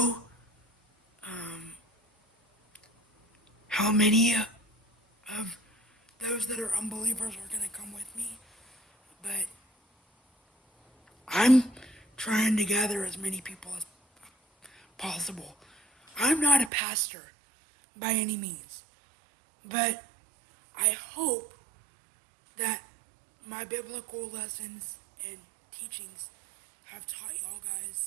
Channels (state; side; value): drops out; left; at 16.7 s